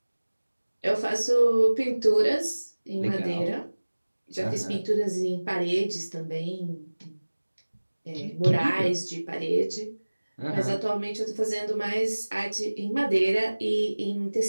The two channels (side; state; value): both; inverted; correlation -1.00